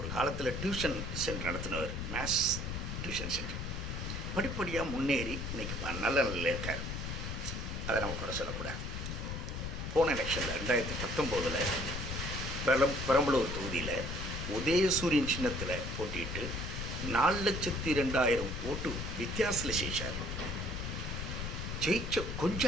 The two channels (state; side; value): noise; left; rumble, 4 dB below the sound